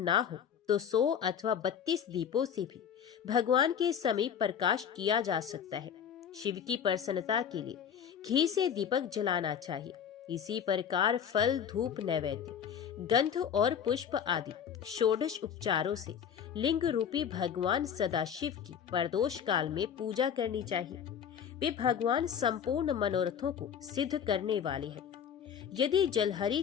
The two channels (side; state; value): right; quieter; 8.2 dB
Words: हो तो 100 अथवा 32 दीपों से भी भगवान के समीप प्रकाश किया जा सकता है। शिव की प्रसन्नता के लिए घी से दीपक जलाना चाहिए। इसी प्रकार फल, धूप, नैवेद्य, गंध और पुष्प आदि षोडश उपचारों से लिंग रूपी भगवान सदाशिव की प्रदोष काल में पूजा करनी चाहिए। वे भगवान संपूर्ण मनोरथों को सिद्ध करने वाले हैं। यदि जलहरी